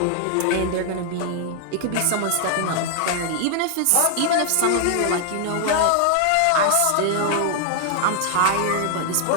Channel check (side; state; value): both; different; correlation 0.00